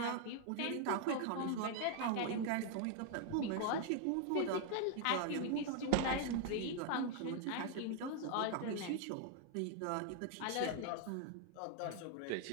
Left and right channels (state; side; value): different; both; correlation 0.00